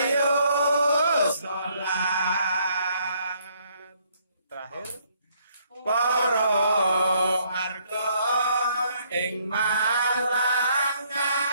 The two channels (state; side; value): inverted; both; correlation -0.67